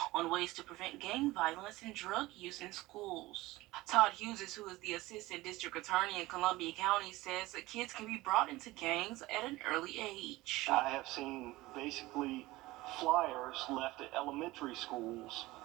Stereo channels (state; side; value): quieter; left; 19.2 dB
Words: on ways to prevent gang violence and drug use in schools. Todd Hughes, who is the Assistant District Attorney in Columbia County, says that kids can be brought into gangs at an early age. I have seen basically flyers left at elementary schools